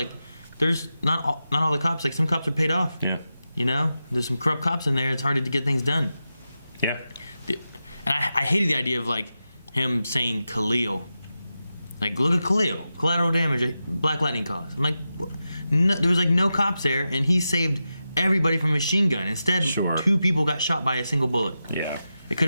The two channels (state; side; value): inverted; both; correlation -0.91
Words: there's not all the cops, like, some cops are paid off. Yeah. You know? There's some corrupt cops in there. It's hard to get things done. Yeah. And I hated the idea of, like, him saying Khalil. Like, look at Khalil. Collateral damage Black Lightning caused. I'm like, no, there was, like, no cops there, and he saved everybody from a machine gun. Instead, Sure. 2 people got shot by a single bullet. Yeah. It could